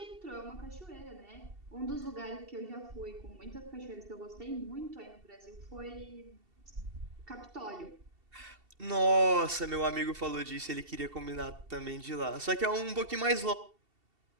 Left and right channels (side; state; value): left; late; 2.7 ms